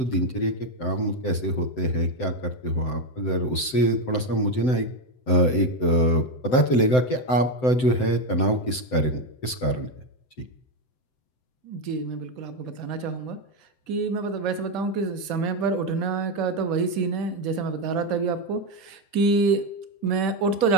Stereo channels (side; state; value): right; late; 7.8 ms